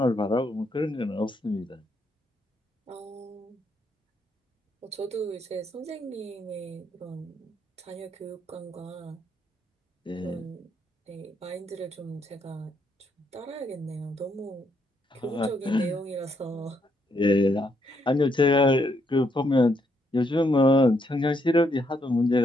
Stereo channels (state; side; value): normal; both; correlation 0.75